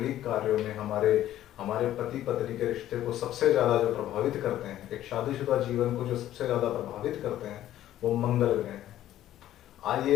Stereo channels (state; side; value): quieter; right; 12.9 dB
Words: कार्यों में, हमारे हमारे पति पत्नी के रिश्ते को सबसे ज्यादा जो प्रभावित करते हैं, एक शादीशुदा जीवन को जो सबसे ज्यादा प्रभावित करते हैं, वो मंगल ग्रह हैं।